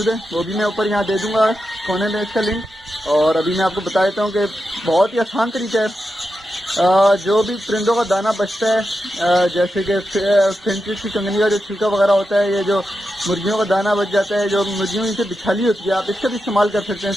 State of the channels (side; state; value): both; normal; correlation 0.89